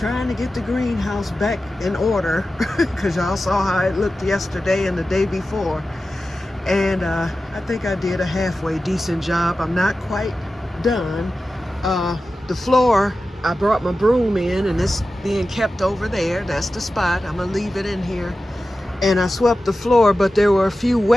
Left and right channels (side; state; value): both; normal; correlation 0.93